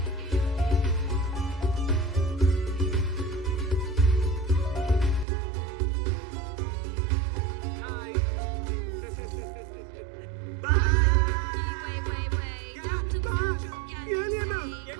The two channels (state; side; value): drops out; left; at 5.2 s